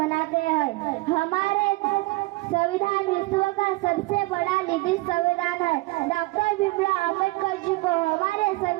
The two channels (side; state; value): left; quieter; 22.3 dB